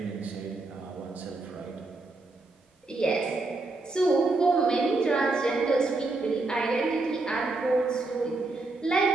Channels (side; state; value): left; quieter; 3.3 dB